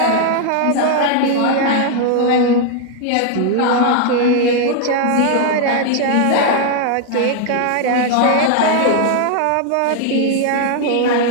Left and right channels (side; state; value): both; different; correlation 0.00